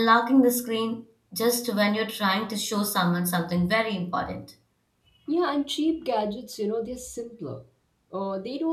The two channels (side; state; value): both; identical; correlation 1.00